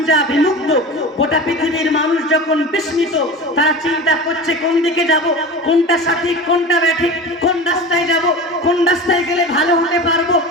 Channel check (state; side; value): normal; both; correlation 0.32